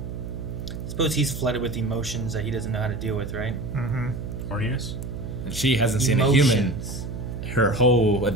Suppose he's flooded with emotions that he doesn't know how to deal with, right? Horniness. And she hasn't seen a human her whole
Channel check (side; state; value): right; noise; hum, 7 dB below the sound